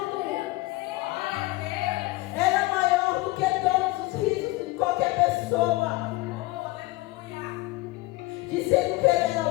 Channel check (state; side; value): quieter; right; 20.9 dB